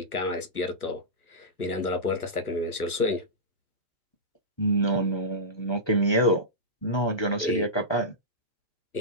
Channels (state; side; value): late; right; 1.2 ms